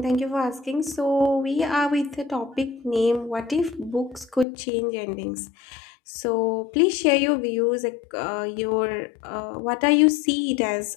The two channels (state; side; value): drops out; right; at 4.5 s